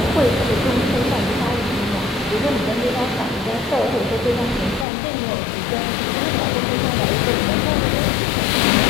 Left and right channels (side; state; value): right; drops out; at 4.9 s